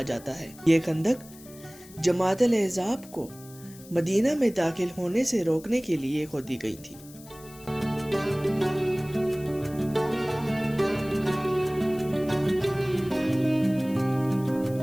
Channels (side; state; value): left; noise; hiss, 21 dB below the sound